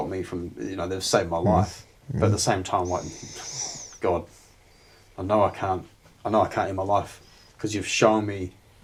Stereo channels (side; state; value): both; identical; correlation 1.00